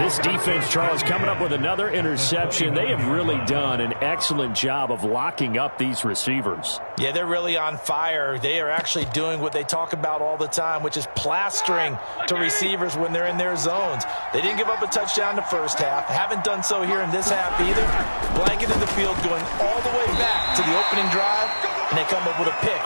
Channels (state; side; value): inverted; both; correlation -1.00